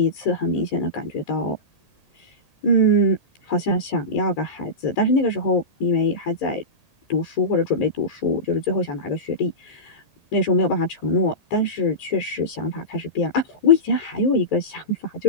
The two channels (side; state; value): right; late; 1.8 ms